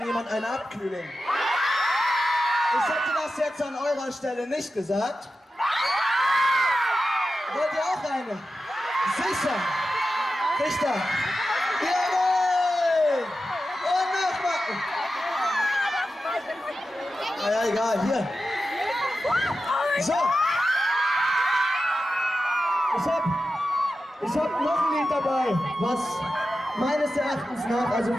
jemand eine Abkühlung? Ich hätte das jetzt an eurer Stelle nicht gesagt. Wollt ihr auch eine? Sicher! Richter! Jawohl! Und nochmal! Naja, egal, hier. So. Ich hab noch ein Lied dabei, was meines Erachtens nach, also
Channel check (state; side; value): normal; both; correlation 0.92